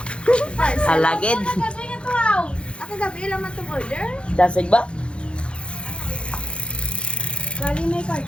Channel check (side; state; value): right; late; 0.057 ms